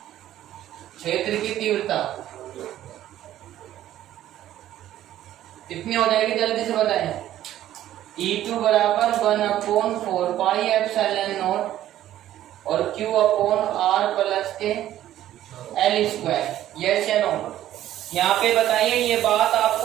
क्षेत्र की तीव्रता कितनी हो जाएगी, जल्दी से बताएं। E2 बराबर 1/4 पाई एप्सिलॉन नॉट और Q अपॉन R प्लस के L²। यस या नो? यहाँ पे बताइए ये बात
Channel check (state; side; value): quieter; left; 12.8 dB